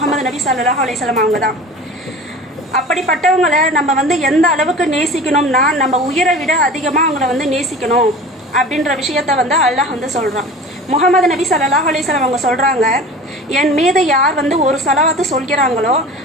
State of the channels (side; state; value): both; normal; correlation 0.38